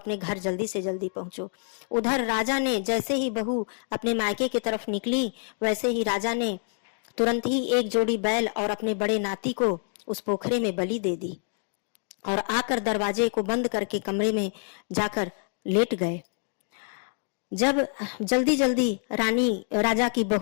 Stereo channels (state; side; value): silent; right; 60 dB below the other